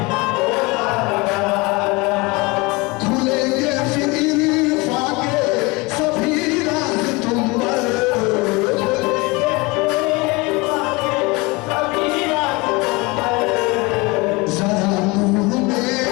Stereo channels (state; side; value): quieter; right; 25.1 dB